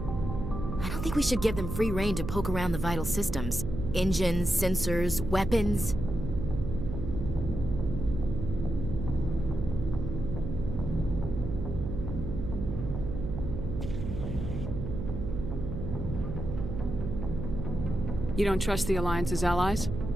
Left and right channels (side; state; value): right; noise; hum, 5 dB below the sound